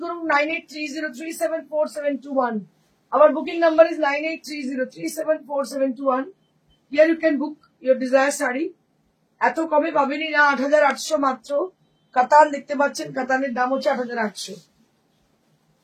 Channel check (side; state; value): both; identical; correlation 1.00